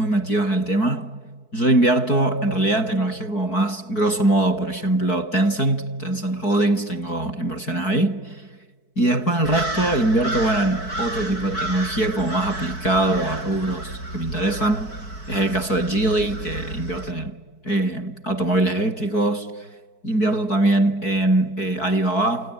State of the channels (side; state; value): right; late; 4.6 ms